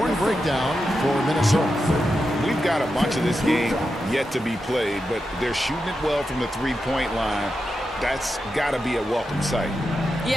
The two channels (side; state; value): both; normal; correlation 0.88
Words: breakdown for Minnesota. We've got a bunch of this game yet to be played, but they're shooting it well from the three-point line. That's got to be a welcome sight.